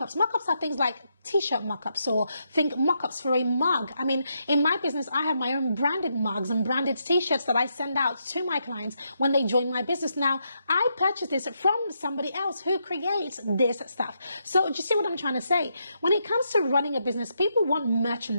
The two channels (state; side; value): inverted; both; correlation -0.80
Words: Mockups are things like t-shirt mockups, or think mockups for a mug. I mean, in my business, I have my own branded mugs and branded t-shirts that I send out to my clients when they join my business. Now, I purchase this from somebody else who creates this stuff. So do you see what I'm trying to say? When it comes to running a business, people want